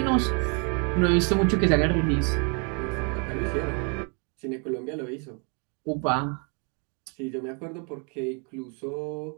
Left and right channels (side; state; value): left; quieter; 36.5 dB